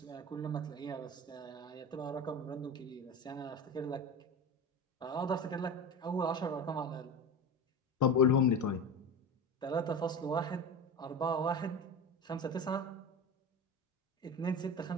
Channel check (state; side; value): normal; both; correlation 0.27